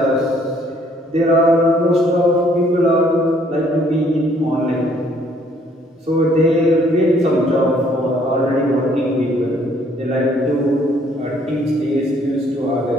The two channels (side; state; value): both; normal; correlation 0.63